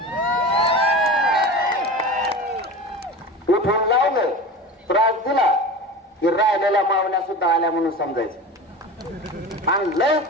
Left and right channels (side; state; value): both; normal; correlation 0.32